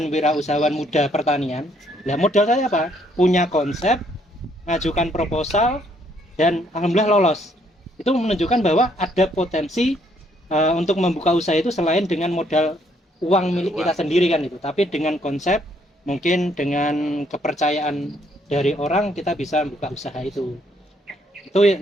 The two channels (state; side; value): normal; both; correlation 0.69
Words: wirausahawan muda pertanian. Nah, modal saya apa? Punya konsep, ngajukan proposal, dan alhamdulillah lolos. Itu menunjukkan bahwa ada potensi untuk membuka usaha itu selain dengan modal uang milik kita sendiri kan itu, tapi dengan konsep, mungkin dengan kepercayaan dari orang kita bisa buka usaha itu. Itu